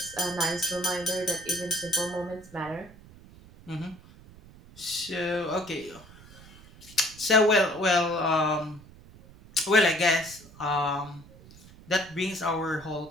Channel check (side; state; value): right; noise; rumble, 21 dB below the sound